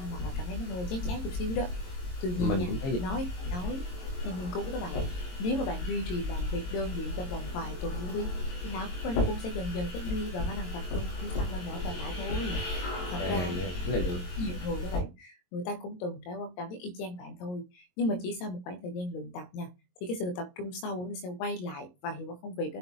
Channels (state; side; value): late; right; 22 ms